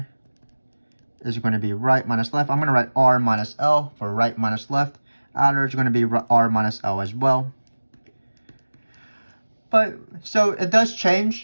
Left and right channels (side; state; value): both; inverted; correlation -1.00